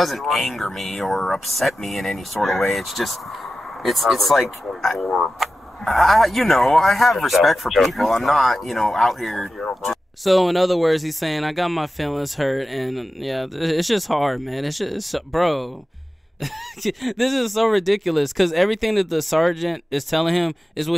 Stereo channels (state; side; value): normal; both; correlation 0.93